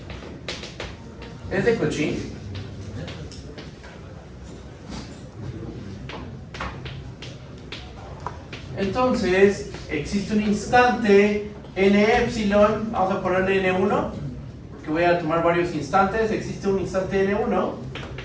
es de Cauchy, entonces existe un instante n epsilon, vamos a ponerle n1, que voy a tomar varios instantes. Existe un instante n1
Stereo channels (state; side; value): identical; both; correlation 1.00